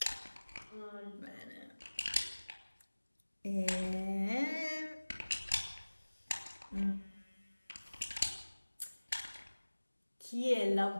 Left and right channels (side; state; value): both; inverted; correlation -1.00